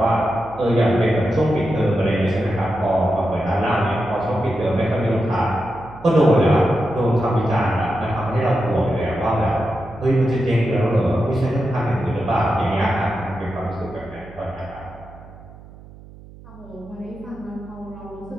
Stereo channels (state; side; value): noise; right; hum, 20 dB below the sound